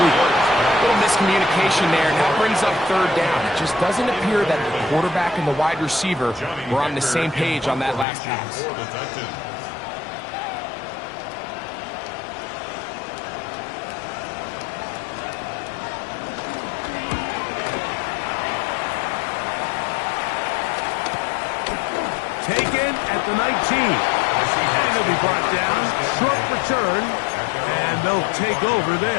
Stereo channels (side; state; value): right; drops out; at 8.1 s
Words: A little miscommunication there, and that brings up 3rd down. It just doesn't appear that the quarterback and the wide receiver were on the same page on that last pass. Taken at the 19. And he'll be brought down. Short return. And they'll take over